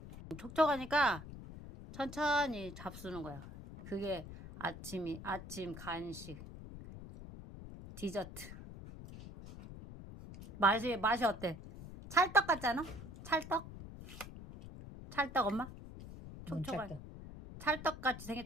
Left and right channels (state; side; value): noise; left; rumble, 13 dB below the sound